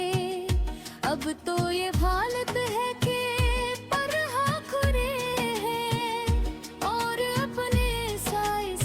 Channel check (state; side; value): identical; both; correlation 1.00